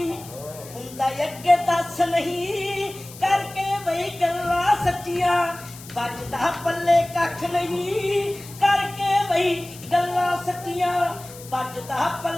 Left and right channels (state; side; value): noise; left; hiss, 17 dB below the sound